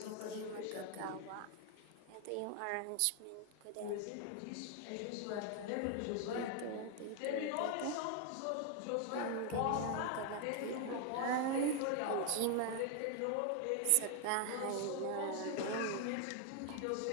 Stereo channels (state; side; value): different; both; correlation 0.00